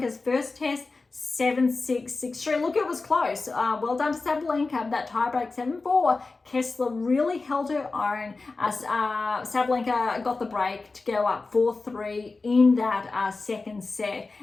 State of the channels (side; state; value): right; quieter; 3.8 dB